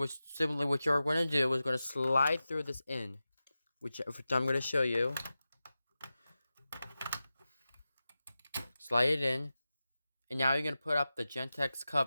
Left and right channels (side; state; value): both; inverted; correlation -0.94